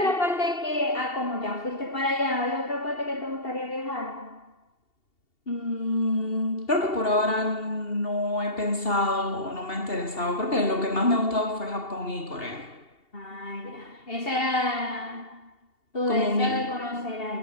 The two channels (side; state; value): right; late; 2.7 ms